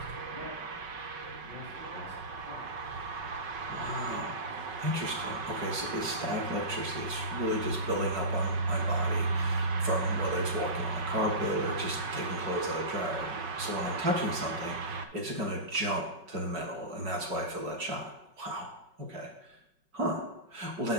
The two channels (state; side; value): late; left; 5.4 ms